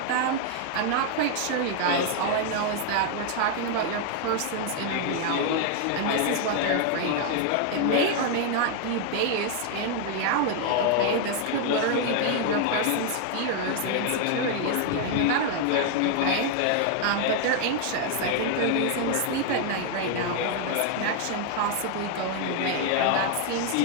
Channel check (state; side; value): different; both; correlation 0.00